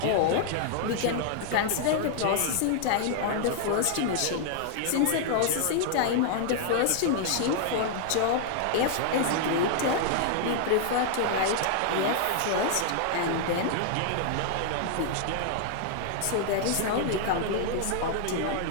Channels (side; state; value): both; different; correlation -0.01